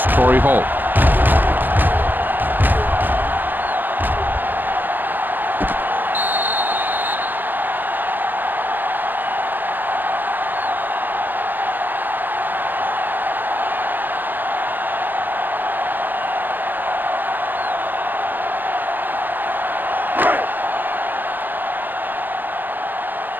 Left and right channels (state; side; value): late; left; 0.091 ms